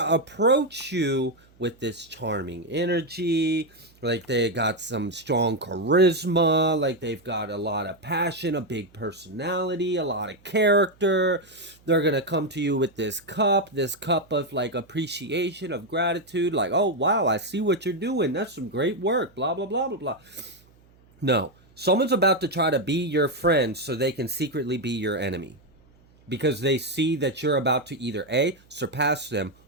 approach you with this charming energy, like they got some strong charisma, like they've got a lot of passion, a big personality, a lot of character. They're going to come to you with this cup of like appreciation, of gratitude, like, oh, wow, I see what you're doing. That's some great work, blah, blah, blah, blah, blah. No, someone's about to try to be your friend so they can secretly be your enemy, because they see that you're about to either A, surpass them,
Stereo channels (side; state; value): right; noise; hum, 30 dB below the sound